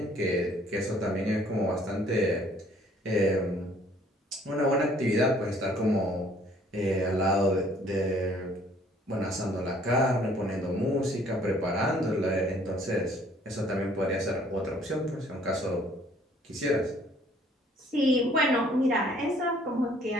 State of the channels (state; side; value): normal; both; correlation 0.59